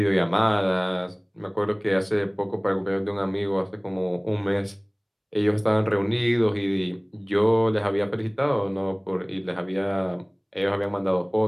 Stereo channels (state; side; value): identical; both; correlation 1.00